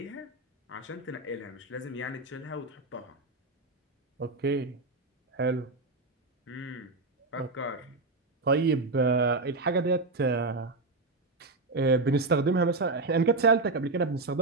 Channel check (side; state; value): left; quieter; 3.3 dB